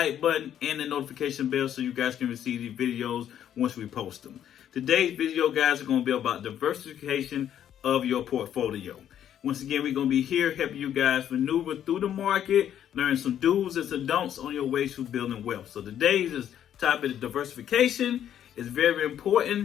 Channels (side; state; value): right; quieter; 10.2 dB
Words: button, and the notification bell so you guys can receive these videos once we post them. Today's video, guys, are going to be about diversification of your portfolio. Once again, we're going to be here helping you guys maneuver through the market, learn some do's and some don'ts on your way to building wealth. So today's topic of diversification is very